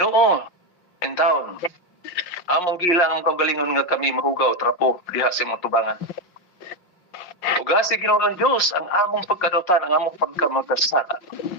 in taon, among gilang ang kaugalingon nga kami mahugaw trapo diha sa imong tubangan. Ugasi Ginoo ang Dios ang among pagkadautan, ang among pagkamagkasala.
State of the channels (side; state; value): right; late; 5.6 ms